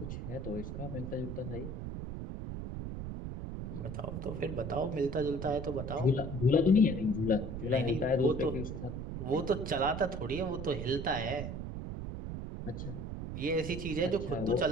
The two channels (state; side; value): noise; right; rumble, 6 dB below the sound